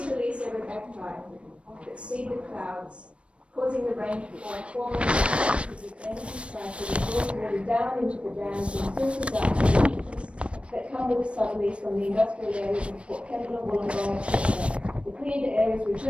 release aerobacti that seed the clouds, causing the rain to fall, forming the energy cycle that draws water down into the dams and filters out the leaches that come with the southerlies from the industrial areas of Port Kembla, Wollongong, etc. The cleared areas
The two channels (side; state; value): left; late; 0.060 ms